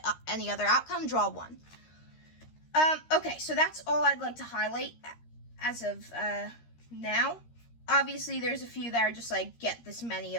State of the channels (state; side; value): late; right; 13 ms